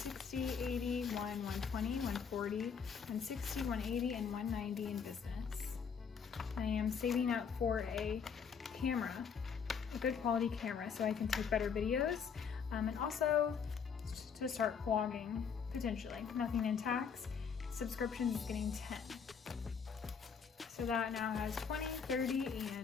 80, 1, 120, 140, 160, 180, and 190 in business. I am saving up for a camera, a good quality camera, so I can take better videos, and also to start vlogging, potentially. Nothing in tax. Subscriptions is getting 10. So that now has 20, 30,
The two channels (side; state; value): right; quieter; 6.5 dB